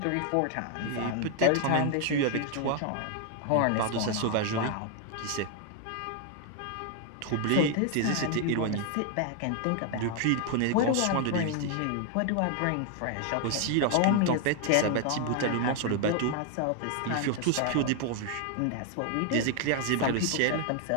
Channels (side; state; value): both; different; correlation 0.00